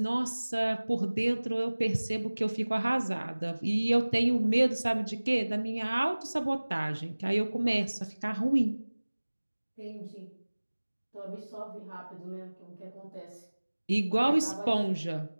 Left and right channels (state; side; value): inverted; both; correlation -1.00